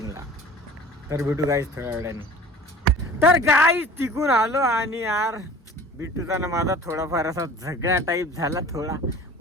तर भेटू गाईज थोड्या वेळाने. तर गाईज तिकून आलो आणि यार बिट्टूचा ना माझा थोडाफार असा झगडा टाईप झाला. थोडा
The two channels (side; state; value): both; normal; correlation 0.43